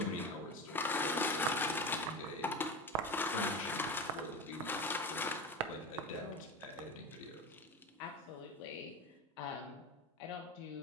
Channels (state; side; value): normal; both; correlation 0.26